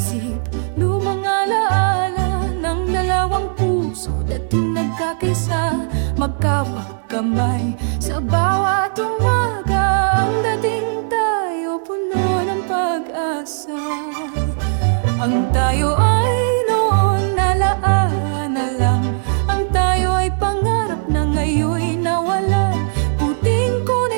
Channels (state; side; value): silent; left; digital silence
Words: lumang alaala ng dalawang puso, dating nagkakaisa, magkawag kamay sa bawat umaga. Ang dating tayo puno ng pag-asa. Ang tayo ay noon alaala na lang. Ang tayo ay pangarap na ngayon'y nawalan. Puting